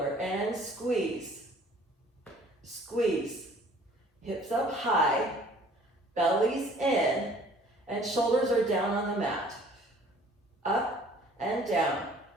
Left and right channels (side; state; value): both; normal; correlation 0.54